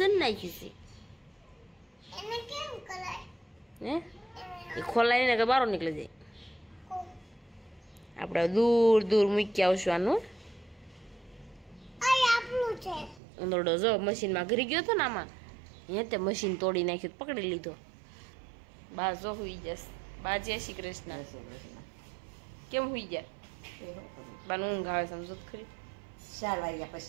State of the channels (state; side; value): drops out; left; at 13.2 s